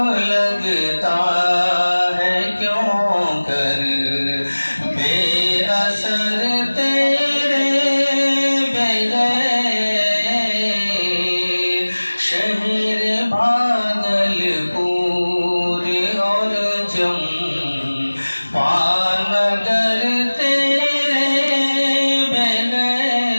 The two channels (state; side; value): inverted; both; correlation -1.00